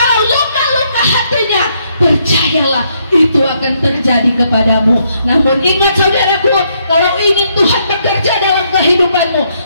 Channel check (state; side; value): inverted; both; correlation -0.74